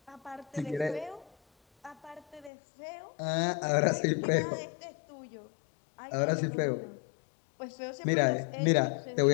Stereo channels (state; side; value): drops out; right; at 2.5 s